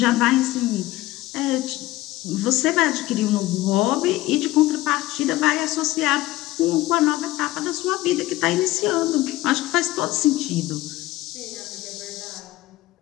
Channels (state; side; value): quieter; right; 17.4 dB